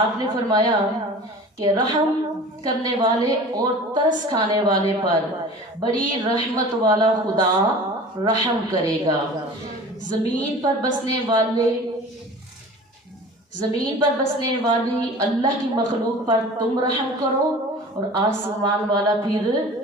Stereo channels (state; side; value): normal; both; correlation 0.40